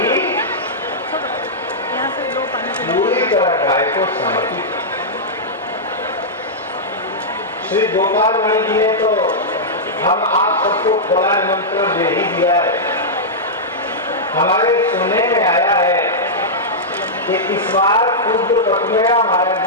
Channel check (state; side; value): normal; both; correlation -0.10